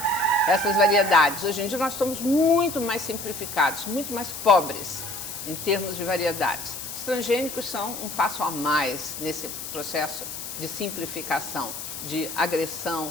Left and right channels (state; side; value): noise; left; hiss, 8 dB below the sound